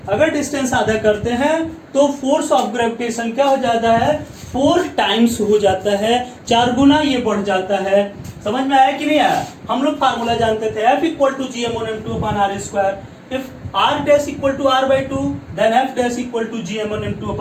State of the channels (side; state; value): both; identical; correlation 1.00